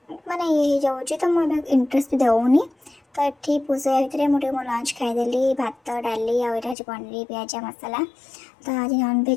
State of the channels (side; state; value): right; drops out; at 6.8 s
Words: माने ये जाऊँगी तो मुझे इंटरेस्ट भी दौनी। तो ये पूजा भितर मुझे मो लंच खाईदेली भात डाली आज पनीर पिज मसला। तो आज